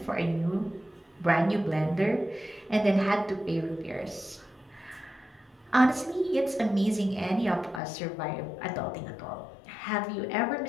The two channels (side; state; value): right; drops out; at 7.8 s